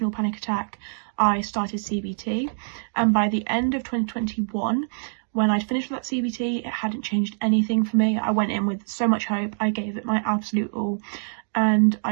panic attack. I started CBT, and by the end of 2021, when I'd finished with that CBT, it hadn't changed anything for me. I went in with so much hope. I gave it my absolute all, and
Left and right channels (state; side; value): silent; left; digital silence